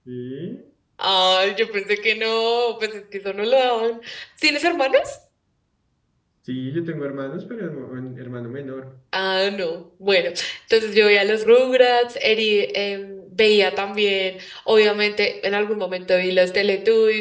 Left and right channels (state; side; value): identical; both; correlation 1.00